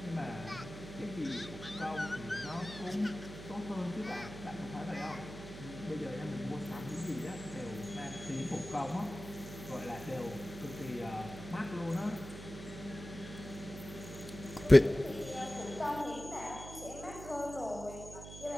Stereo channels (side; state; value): right; noise; hum, 12 dB below the sound